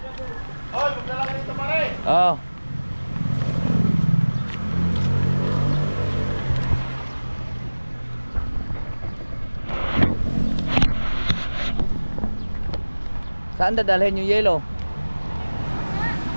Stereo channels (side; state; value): both; inverted; correlation -1.00